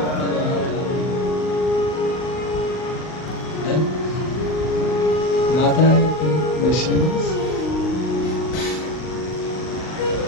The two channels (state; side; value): late; right; 39 ms